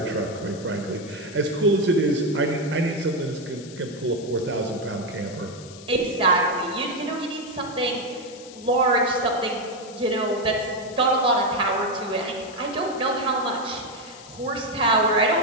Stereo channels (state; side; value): noise; left; hiss, 18 dB below the sound